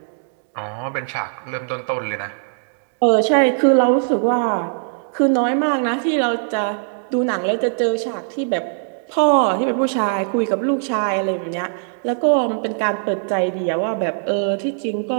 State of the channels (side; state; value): left; silent; 66 dB below the other